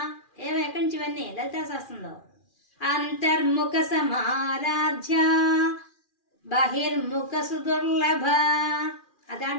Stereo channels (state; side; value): late; right; 2.4 ms